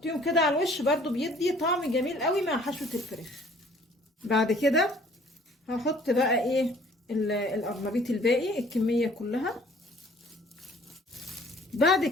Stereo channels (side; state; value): both; normal; correlation 0.55